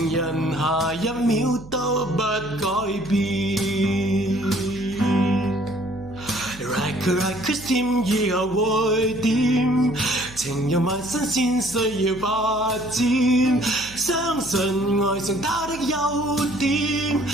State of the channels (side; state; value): right; noise; hum, 18 dB below the sound